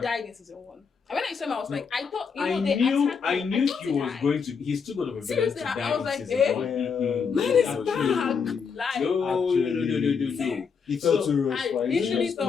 died in season 1. And when I saw him, I was like, I thought, I they knew attacked I him. knew thought he was died. going to. He's too good of a villain Seriously, to I die was in like, season eh? 1. Man is Actually. back. Like, No. He felt So, too rushed I for it. literally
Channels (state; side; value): quieter; right; 5.9 dB